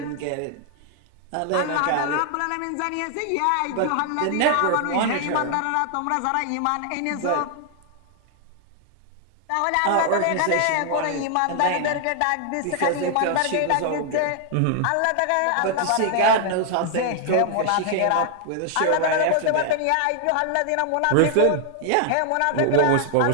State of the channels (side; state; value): both; different; correlation 0.00